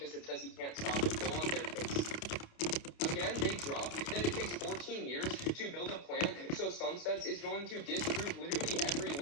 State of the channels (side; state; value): right; late; 29 ms